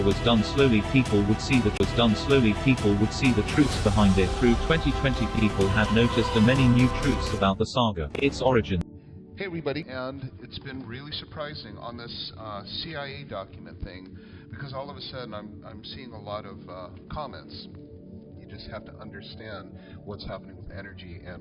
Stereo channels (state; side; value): identical; both; correlation 1.00